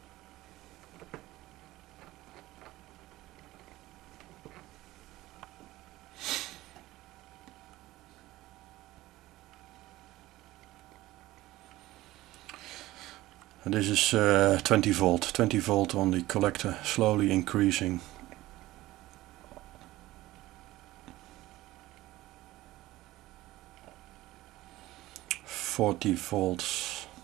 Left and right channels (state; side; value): quieter; left; 17.2 dB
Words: And this is 20 volt on the collector, slowly increasing. volts.